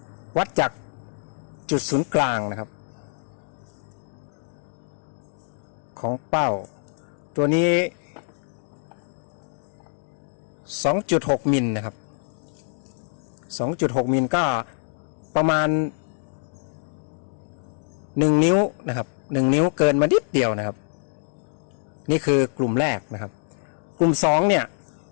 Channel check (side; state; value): right; silent; digital silence